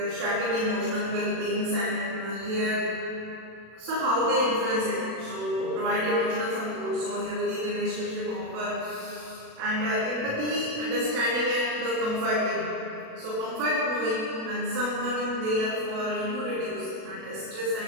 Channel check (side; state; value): left; late; 37 ms